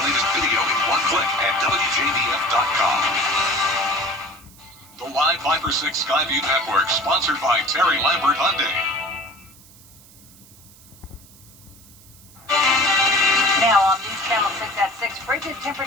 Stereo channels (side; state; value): right; noise; hiss, 24 dB below the sound